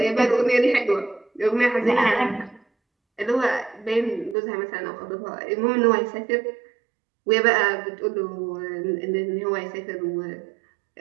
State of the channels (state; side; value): drops out; left; at 4.4 s